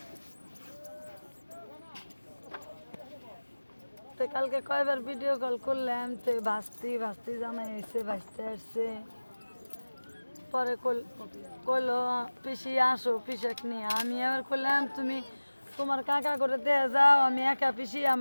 তো কালকে কয়বার ভিডিও কল করলাম, তো ভাস্তি জামাই এসে ভাসতে আসছে। পরে কইলো পিসি আসো পিসাক নিয়ে। আমি আবার কইলাম তুমি তোমার কাকা করে দিয়ে যাও, আমি একা পিসি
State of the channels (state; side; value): inverted; both; correlation -1.00